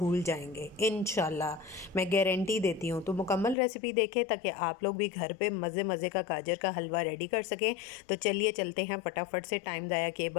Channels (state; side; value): drops out; right; at 3.6 s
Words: जाएंगे इंशाल्लाह, मैं गारंटी देती हूँ। तो मुकम्मल रेसिपी देखें ताकि आप लोग भी घर पे मज़े मज़े का गाजर का हलवा रेडी कर सकें। तो चलिए चलते हैं फटाफट से टाइम ज़ाया किए